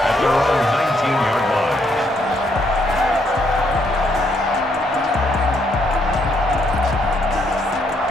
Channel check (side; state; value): both; normal; correlation 0.73